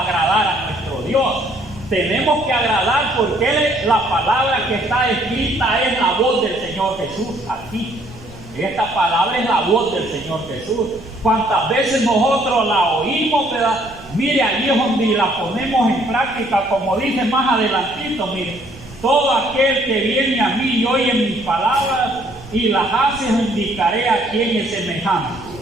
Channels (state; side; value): noise; right; rumble, 20 dB below the sound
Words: agradar a nuestro Dios. Tenemos que agradar porque la palabra que está escrita es la voz del Señor Jesús aquí. Esta palabra es la voz del Señor Jesús. ¿Cuántas veces nosotros la oímos, verdad? Mire, allí es donde la ponemos en práctica, como dice más adelantito, mire, todo aquel que viene a mí y oye mis palabras y las hace, indicaré a quién es semejante.